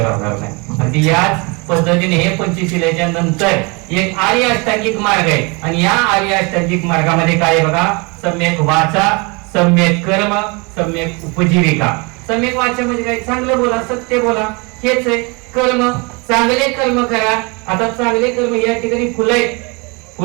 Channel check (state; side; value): quieter; left; 29.3 dB